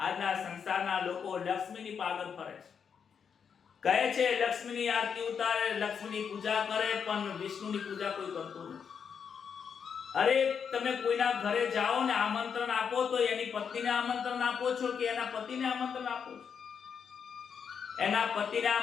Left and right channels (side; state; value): right; quieter; 6.9 dB